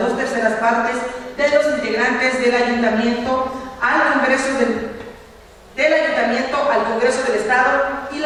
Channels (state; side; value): identical; both; correlation 1.00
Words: partes de los integrantes del ayuntamiento al Congreso al Congreso del Estado y